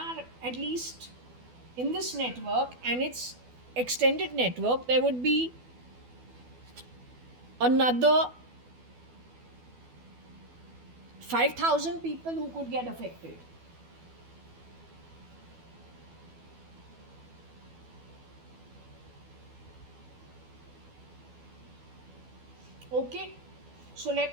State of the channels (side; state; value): left; late; 12 ms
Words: at least in this network and its extended network, there would be another 5,000 people who could get affected. Okay, so